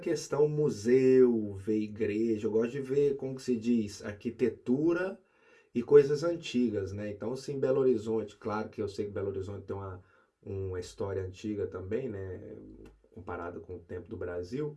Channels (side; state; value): both; identical; correlation 1.00